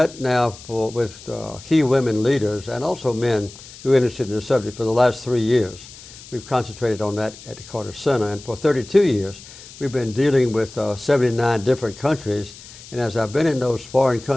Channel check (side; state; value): left; noise; hiss, 18 dB below the sound